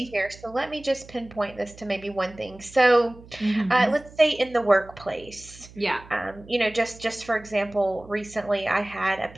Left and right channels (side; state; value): right; noise; hum, 21 dB below the sound